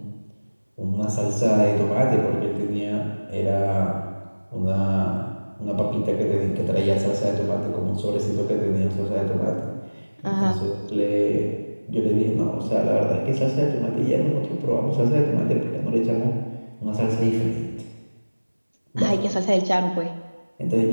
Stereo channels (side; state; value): both; inverted; correlation -1.00